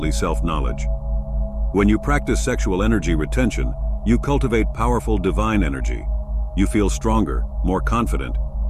self-knowledge. When you practice sexual energy retention, you cultivate powerful divine energy. You feel stronger, more confident,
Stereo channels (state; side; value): identical; both; correlation 1.00